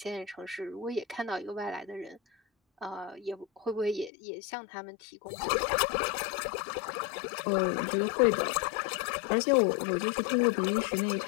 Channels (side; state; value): right; drops out; at 4.1 s